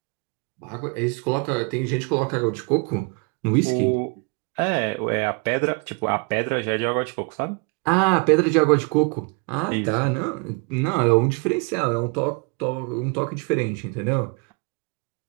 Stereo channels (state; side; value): quieter; left; 33.2 dB